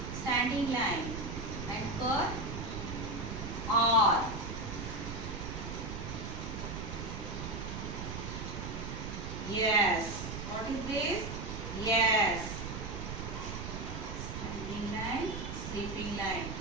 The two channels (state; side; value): noise; right; rumble, 6 dB below the sound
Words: standing line and curve. R. Yes. What is this? Yes. Standing line, sleeping line.